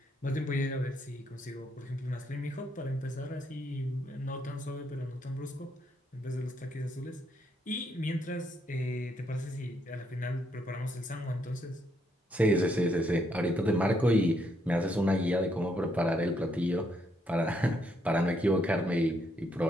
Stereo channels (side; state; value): both; normal; correlation 0.74